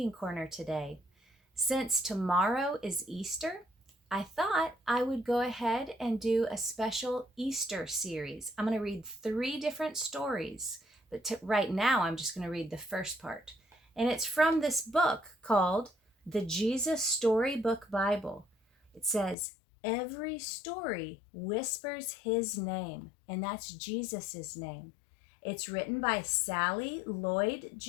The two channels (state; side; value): drops out; right; at 19.4 s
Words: corner today. Since tomorrow is Easter, I thought I would go ahead and do a special Easter series. I'm going to read three different stories, but right now I'm just going to read the first part. And it's from this book called the Jesus Storybook Bible. It says, every story whispers his name, and that's Jesus's name. It's written by Sally